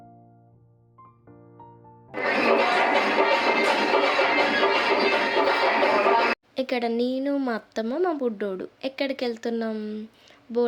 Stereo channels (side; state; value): both; identical; correlation 1.00